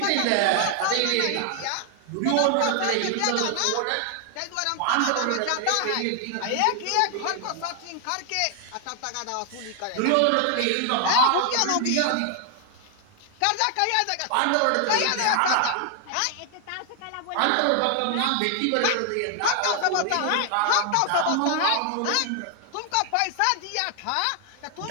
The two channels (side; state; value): both; different; correlation 0.00